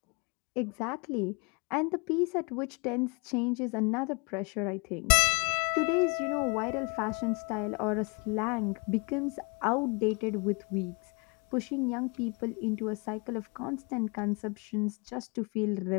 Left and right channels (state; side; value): quieter; right; 32.5 dB